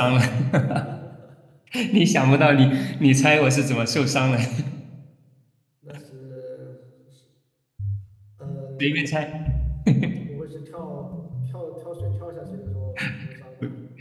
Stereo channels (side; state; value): both; identical; correlation 1.00